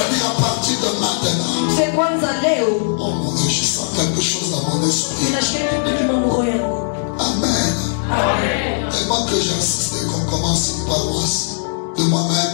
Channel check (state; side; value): silent; right; digital silence